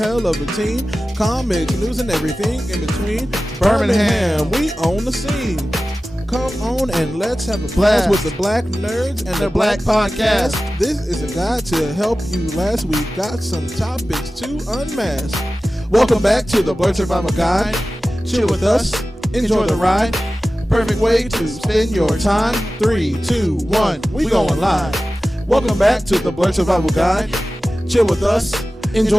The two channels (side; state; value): both; normal; correlation 0.96